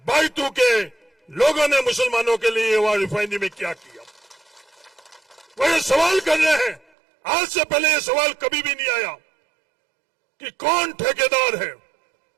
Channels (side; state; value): left; drops out; at 6.8 s